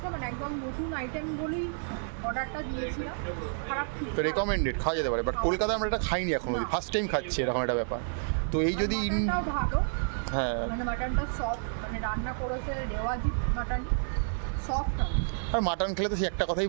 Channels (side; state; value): left; silent; digital silence